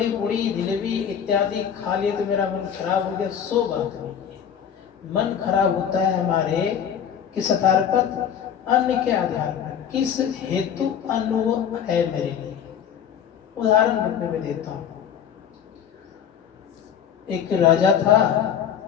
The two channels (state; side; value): quieter; right; 8.5 dB